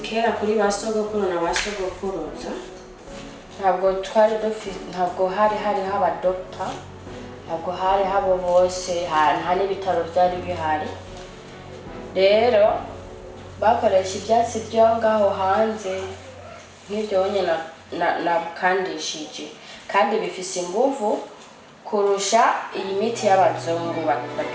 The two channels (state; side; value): identical; both; correlation 1.00